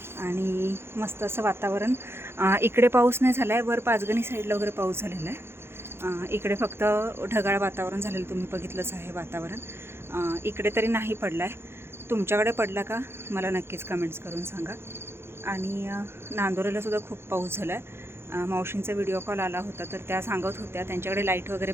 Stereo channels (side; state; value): left; late; 0.12 ms